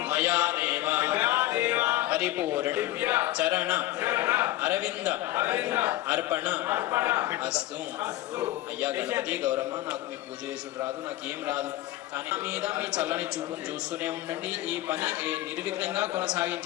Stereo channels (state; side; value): quieter; right; 16.1 dB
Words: మయా దేవ పరిపూర్ణ చరణ అరవింద అర్పణ అస్తు అయ్యా గణపతి గౌరమ్మ నాకు మీ పూజ చేసుడు రాదు నాకేం రాదు కానీ మీద మీ చల్లని చూపును చూస్తూనే ఉండండి ఈ పని నిర్విఘ్నంగా